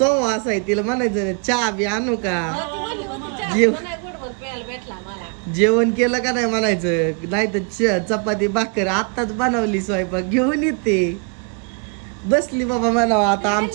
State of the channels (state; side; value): quieter; left; 35.1 dB